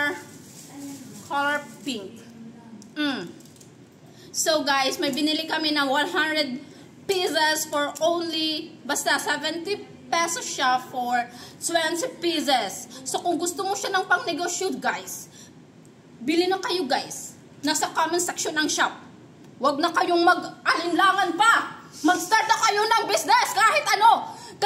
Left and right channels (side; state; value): both; identical; correlation 1.00